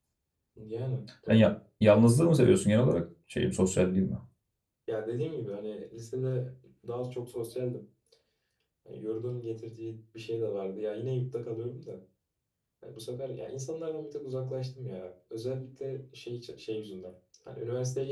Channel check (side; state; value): both; identical; correlation 1.00